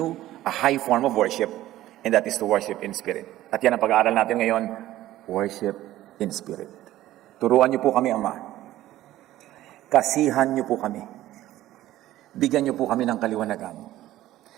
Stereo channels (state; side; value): quieter; left; 14.7 dB